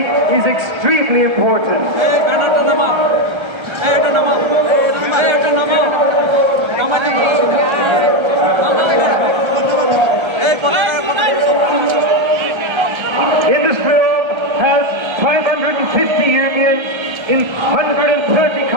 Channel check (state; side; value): late; left; 1.3 ms